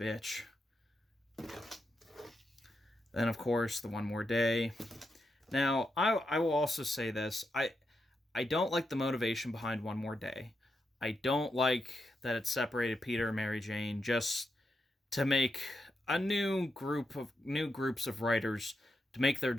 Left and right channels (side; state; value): both; normal; correlation 0.84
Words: Then, of course, the One More Day. Now, I will also say this. I don't like the motivation behind One More Day. I don't like that it separated Peter and Mary Jane just to make a new groups of writers to make their